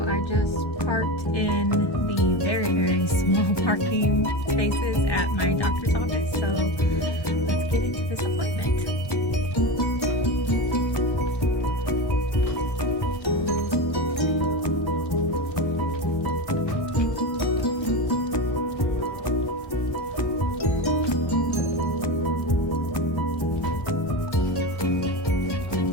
I just parked in the very small parking spaces at my doctor's office. So let's get into this appointment.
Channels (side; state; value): right; late; 1.1 ms